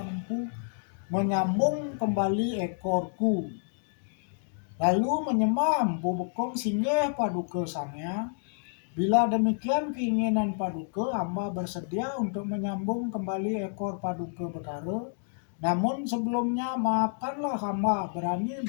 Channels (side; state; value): right; silent; 58 dB below the other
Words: Empu menyambung kembali ekorku." Lalu menyembah Empu Bekung, "Singgih Paduka Sang Hyang, bila demikian keinginan Paduka, hamba bersedia untuk menyambung kembali ekor Paduka Betara. Namun sebelumnya maafkanlah hamba berani